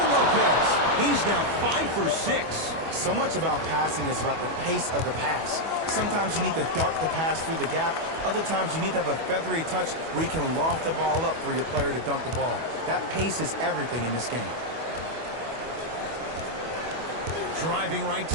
Lopez, he's now 5 for 6. So much about passing is about the pace of the pass. Sometimes you need to dart the pass through the gap. Other times you need to have a feathery touch where you can loft the ball up for your player to dunk the ball. That pace is everything in this game. Driving right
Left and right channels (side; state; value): left; late; 25 ms